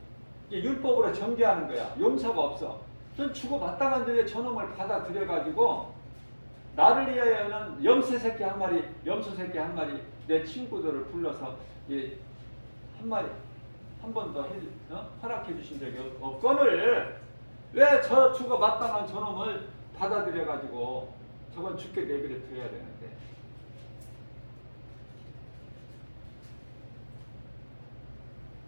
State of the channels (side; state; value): both; inverted; correlation -1.00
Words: 율법으로 정죄하는 거야. 용서가 없어. 전 죽어 마땅한데 왜 저놈을 받아들여가지고 나를 위하여는 염소 새끼 한 마리 내 친구들을 불러서 한 마리 한 번 더 허락해 주신 적이 없거늘 왜 저 죽어 마땅한 저놈을 받아들여가지고 저건 죽게 내버려 둬야 되는데.